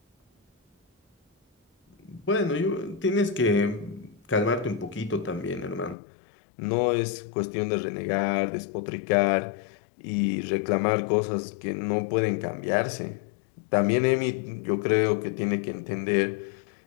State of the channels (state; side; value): drops out; right; at 6.0 s